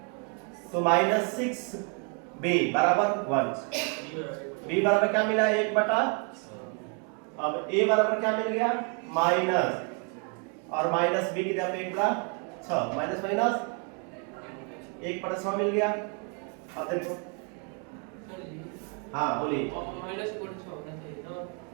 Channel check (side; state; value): left; quieter; 38.4 dB